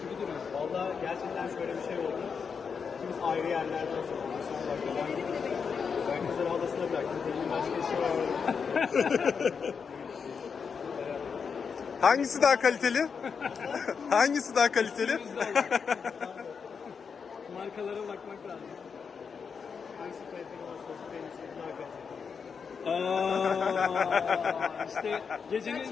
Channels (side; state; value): right; quieter; 6.0 dB